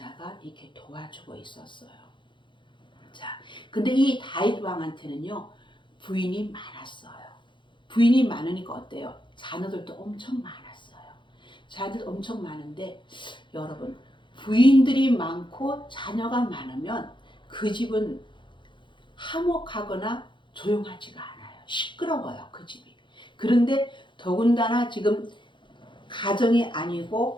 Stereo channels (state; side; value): late; right; 0.23 ms